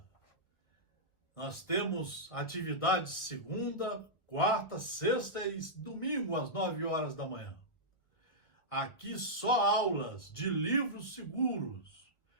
Nós temos atividades segunda, quarta, sexta e domingo às 9 horas da manhã. Aqui só aulas de livros seguros,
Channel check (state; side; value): late; right; 1.4 ms